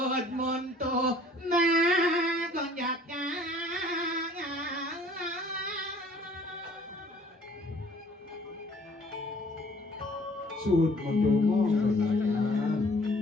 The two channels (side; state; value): both; normal; correlation 0.56